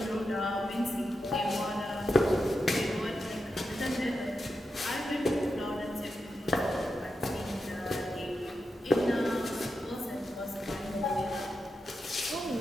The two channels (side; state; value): both; normal; correlation 0.88